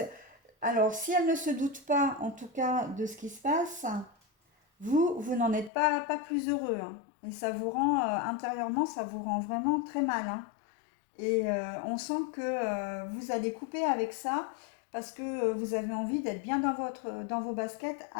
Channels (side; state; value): right; drops out; at 5.7 s